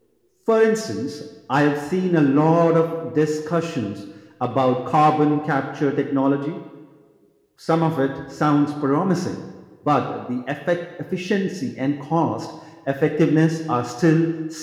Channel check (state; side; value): identical; both; correlation 1.00